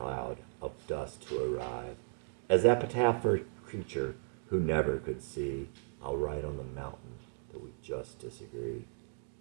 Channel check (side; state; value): left; silent; digital silence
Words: of dust to arrive. As epitaph for a creature who never could see, I'll write on the mountain that we just disagree.